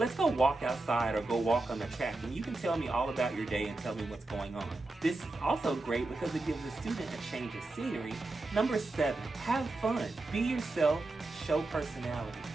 go walk outside or go walk on the track and you can tell me all about your day and tell me what's going on. This is also great because it gives the student a change of scenery. Number 7, have fun. Be yourself, show personality.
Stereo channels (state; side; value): quieter; left; 3.1 dB